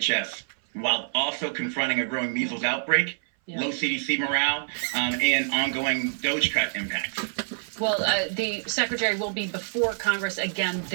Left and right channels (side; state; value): left; silent; 59 dB below the other